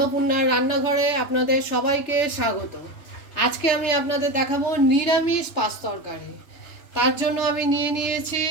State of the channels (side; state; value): right; late; 3.4 ms